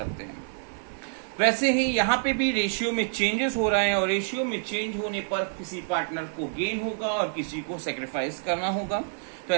हैं। वैसे ही यहाँ पे भी रेशियो में चेंजेस हो रहे हैं और रेशियो में चेंज होने पर किसी पार्टनर को गेन होगा और किसी को सेक्रीफाइस करना होगा। तो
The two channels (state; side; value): silent; left; digital silence